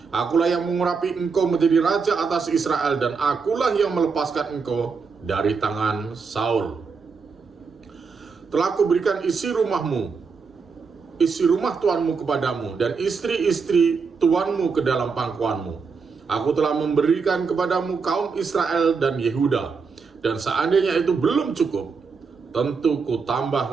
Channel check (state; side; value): quieter; left; 5.2 dB